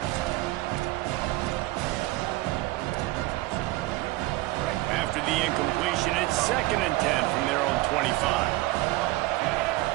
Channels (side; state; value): left; quieter; 19.2 dB